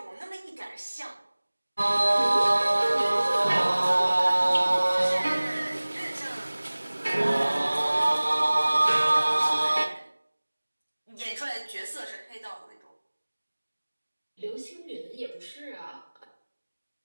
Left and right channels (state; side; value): inverted; both; correlation -1.00